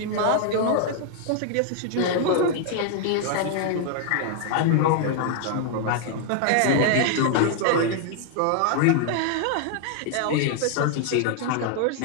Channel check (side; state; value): both; different; correlation 0.00